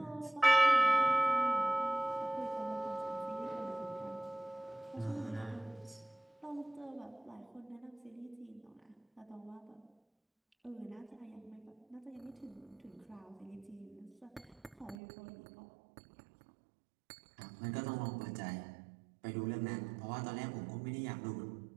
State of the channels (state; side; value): drops out; left; at 15.0 s